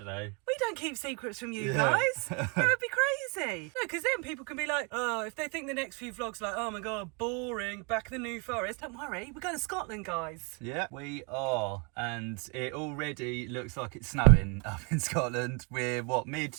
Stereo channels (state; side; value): quieter; left; 33.0 dB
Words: know. We don't keep secrets from you guys. That would be crazy. No, because then people can be like, oh, if they think the next few vlogs are like, oh my God, boring, back in the New Forest. Don't worry, we're going to Scotland, guys. Yeah, we are. And it already looks like it's snowing up in Scotland. We're,